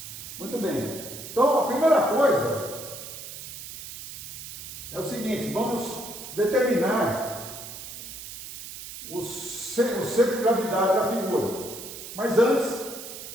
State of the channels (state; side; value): noise; right; hiss, 11 dB below the sound